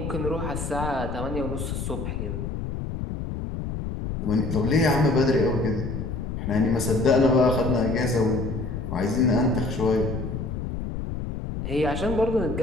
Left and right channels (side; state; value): left; noise; rumble, 5 dB below the sound